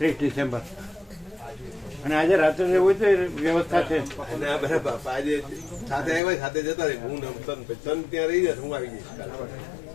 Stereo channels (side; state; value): right; drops out; at 6.2 s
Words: ડિસેમ્બર. અને આજે રાત્રે રહેવું હોય તો એ વ્યવસ્થા છે. અને આ બધા આજે સાથે આવ્યા સાથે જતા રહે. હું તન ત્યાં રહી જાય હું આવી જઈશ.